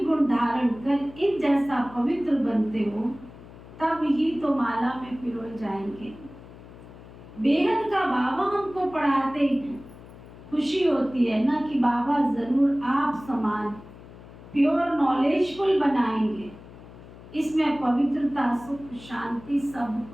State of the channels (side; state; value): left; noise; hum, 18 dB below the sound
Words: धारण कर इन जैसा पवित्र बनते हो, तब ही तो माला में पिरोए जाएंगे। बेहद का बाबा हमको पढ़ाते हैं, खुशी होती है ना कि बाबा जरूर आप समान प्योर नॉलेजफुल बनाएंगे। इसमें पवित्रता, सुख, शांति सब